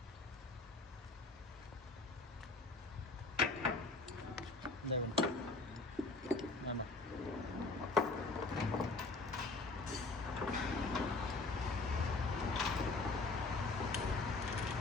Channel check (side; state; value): right; quieter; 3.5 dB